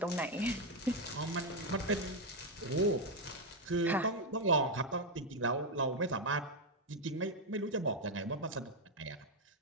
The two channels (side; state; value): both; normal; correlation 0.03